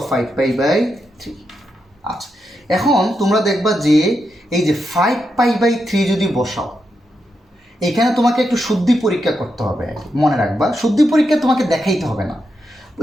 5π/3। আচ্ছা এখন তোমরা দেখবা যে এই যে 5π/3 যদি বসাও, এখানে তোমাকে একটু শুদ্ধি পরীক্ষা করতে হবে, মনে রাখবা শুদ্ধি পরীক্ষা তোমাকে দেখাইতে হবে না,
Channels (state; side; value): normal; both; correlation 0.85